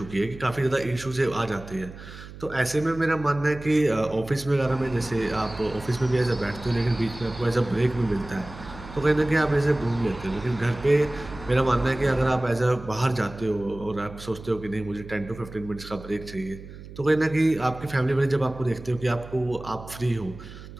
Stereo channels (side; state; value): right; noise; hum, 15 dB below the sound